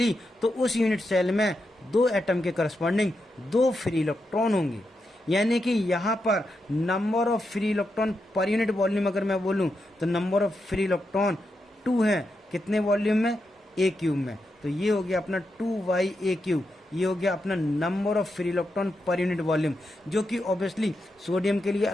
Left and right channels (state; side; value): normal; both; correlation 0.86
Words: तो उस यूनिट सेल में 2 एटम के करस्पॉन्डिंग 2 फ्री इलेक्ट्रॉन होंगे। यानी कि यहाँ पर number of free electron per unit volume अगर मैं बोलूँ तो नंबर ऑफ फ्री इलेक्ट्रॉन 2 है, कितने वॉल्यूम में, A³ में। तो ये हो गया अपना 2/A³, ये हो गया अपना number of free electron per unit volume, जो कि ऑब्वियसली सोडियम के लिए